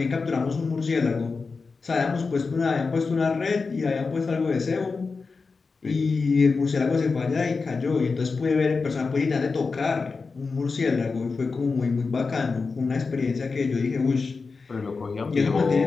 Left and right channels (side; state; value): right; quieter; 4.5 dB